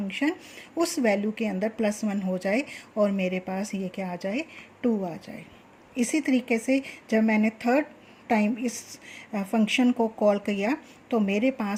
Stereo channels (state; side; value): identical; both; correlation 1.00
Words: उस वैल्यू के अंदर +1 हो जाए और मेरे पास ये क्या आ जाए 2 आ जाए। इसी तरीके से जब मैंने थर्ड टाइम इस फंक्शन को कॉल किया तो मेरे